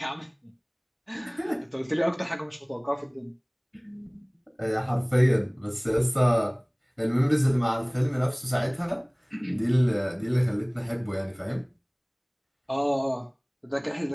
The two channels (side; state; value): both; identical; correlation 1.00